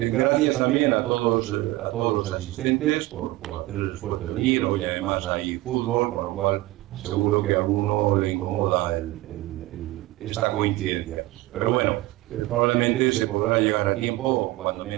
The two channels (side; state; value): left; quieter; 18.3 dB